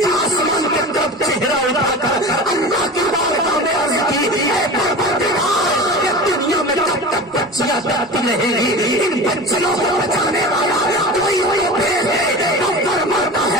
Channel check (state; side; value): normal; both; correlation 0.32